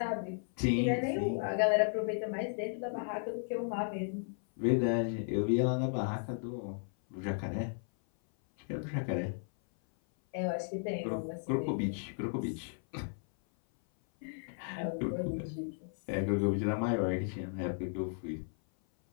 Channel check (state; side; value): silent; right; 55 dB below the other